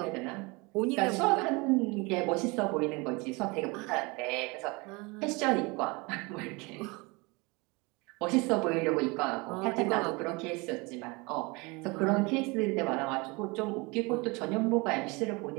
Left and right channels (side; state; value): left; quieter; 26.6 dB